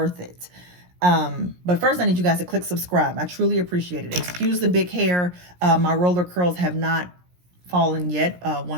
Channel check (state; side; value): late; left; 17 ms